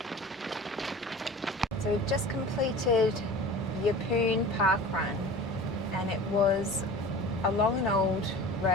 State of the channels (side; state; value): both; normal; correlation 0.38